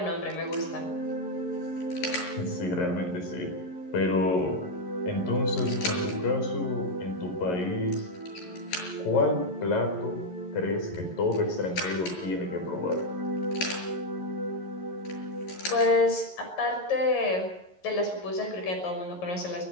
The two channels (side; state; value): right; late; 11 ms